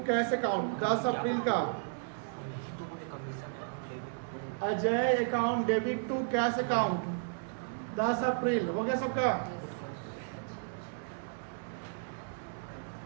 cash account 10 April का, Ajay account debit to cash account 10 April हो गया सबका।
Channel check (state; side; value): silent; left; digital silence